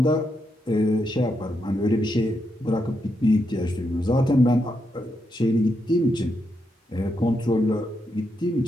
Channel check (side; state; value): both; normal; correlation 0.82